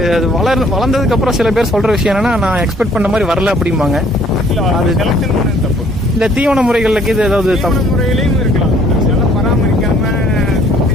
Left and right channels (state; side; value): normal; both; correlation 0.60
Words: அது வளர்ந்ததுக்கப்புறம் சில பேர் சொல்கிற விஷயம் என்னன்னா நான் எக்ஸ்பெக்ட் பண்ண மாதிரி வரல அப்படிம்பாங்க. இல்லை அது செலக்ஷன் பண்ணது தப்பு. இந்த தீவன முறைகளுக்கு இது ஏதாவது தீவன முறைகளையும் இருக்கலாம். நல்லா பராமரிக்காமல்